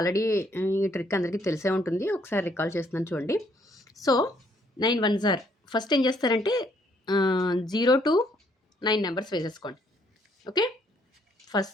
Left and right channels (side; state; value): both; normal; correlation 0.68